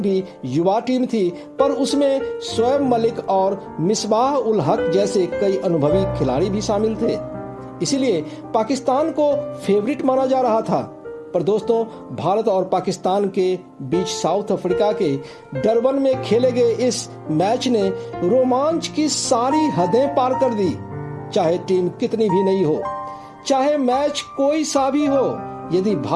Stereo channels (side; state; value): both; identical; correlation 1.00